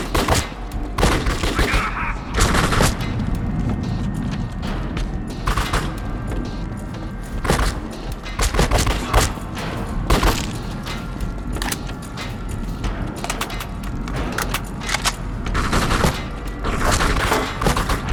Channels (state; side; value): identical; both; correlation 1.00